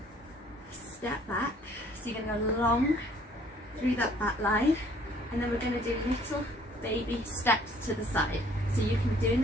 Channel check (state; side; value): normal; both; correlation 0.59